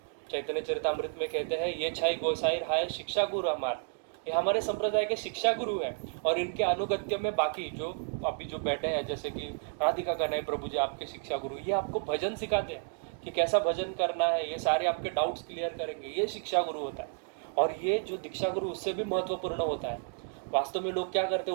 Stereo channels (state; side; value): silent; left; 57 dB below the other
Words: चैतन्य चरितामृत में कहते हैं ये छाई गोसाई हाय शिक्षा गुरु हमार, ये हमारे संप्रदाय के शिक्षा गुरु है। और इनके अनुगत्य में बाकी जो अभी जो बैठे हैं, जैसे कि राधिका कन्हैया प्रभु जी आपके शिक्षा गुरु, ये आपको भजन सिखाते हैं कि कैसा भजन करना है, ये सारे आपके डाउट्स क्लियर करेंगे, ये शिक्षा गुरु होता है। और ये जो दीक्षा गुरु उससे भी महत्वपूर्ण होता है। वास्तव में लोग क्या करते